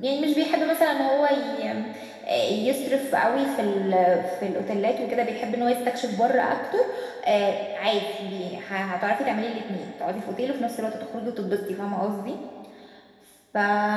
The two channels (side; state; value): both; identical; correlation 1.00